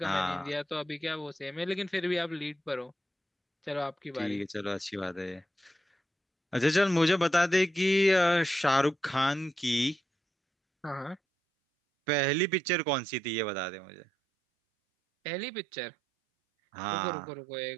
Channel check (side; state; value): left; drops out; at 11.2 s